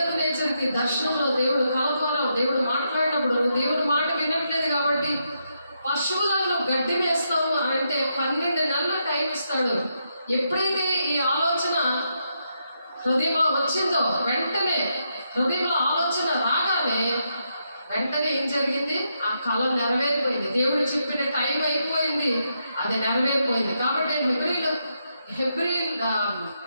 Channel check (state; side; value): inverted; both; correlation -0.81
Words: దర్శనంలో దేవుడు కల ద్వారా దేవుడు మాట్లాడినప్పుడు, నువ్వు దేవుడి మాట వినట్లేదు కాబట్టి పశువులను నువ్వు గడ్డి వేస్తావు అని అంటే 12 నెలల టైం ఇస్తాడు. ఎప్పుడైతే ఈ ఆలోచన హృదయంలో వచ్చిందో వెంటనే, హృదయంలో ఆలోచన రాగానే వెంటనే ఏం జరిగింది, ఆ కళ నెరవేరిపోయింది. దేవుడు చెప్పిన టైం అయిపోయింది, అది నెరవేరిపోయింది. కాబట్టి